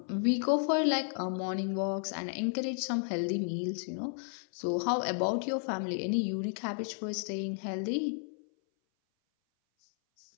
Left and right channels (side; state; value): right; silent; 56 dB below the other